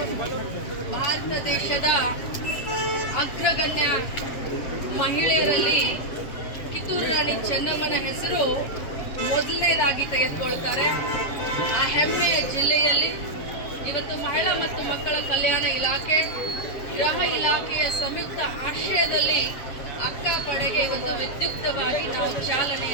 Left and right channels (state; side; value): late; right; 7.4 ms